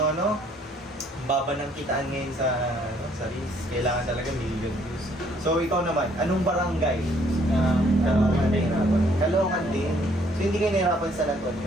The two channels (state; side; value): normal; both; correlation 0.64